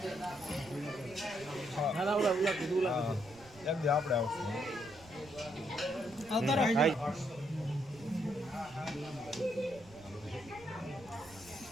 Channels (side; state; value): right; noise; rumble, 22 dB below the sound